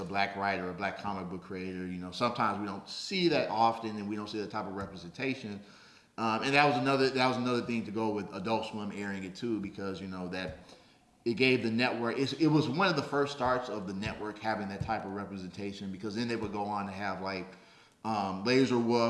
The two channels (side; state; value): both; identical; correlation 1.00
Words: black writer, a black comic book creator. Sometimes we don't see that often, and we don't see that type of representation. And that was another thing to go with Adult Swim airing it too, because that it gave the network. It was one of the first starts of the network having that type of representation, because then they would go on to have like Laser